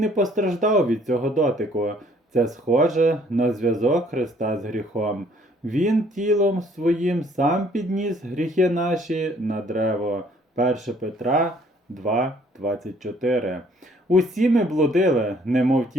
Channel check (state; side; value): normal; both; correlation 0.61